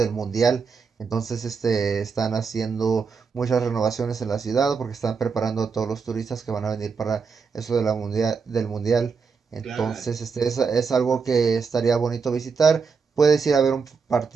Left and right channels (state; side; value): quieter; left; 5.4 dB